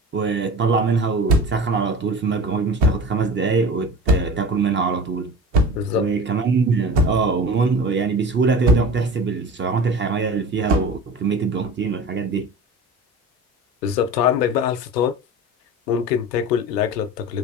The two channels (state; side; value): normal; both; correlation 0.35